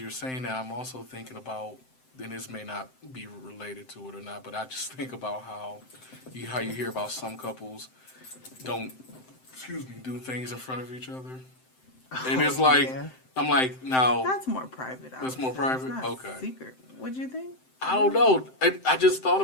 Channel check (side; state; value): right; late; 7.7 ms